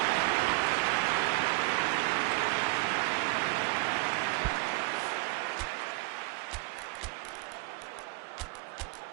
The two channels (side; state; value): left; quieter; 26.2 dB